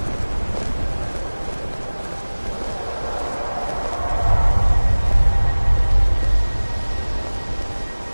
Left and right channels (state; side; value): inverted; both; correlation -1.00